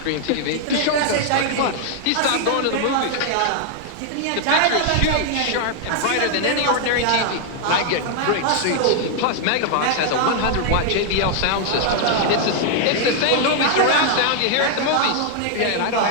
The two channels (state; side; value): different; both; correlation 0.00